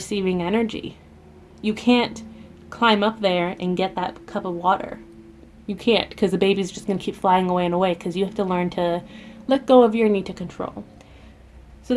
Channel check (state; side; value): identical; both; correlation 1.00